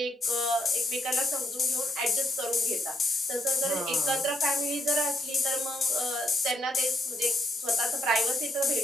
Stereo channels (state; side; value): normal; both; correlation 0.77